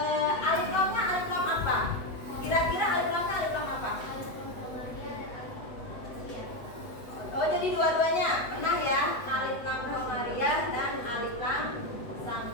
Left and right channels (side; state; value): right; late; 8.1 ms